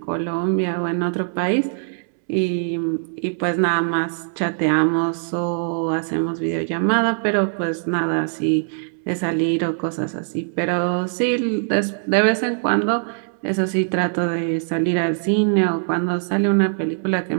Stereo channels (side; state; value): left; silent; 64 dB below the other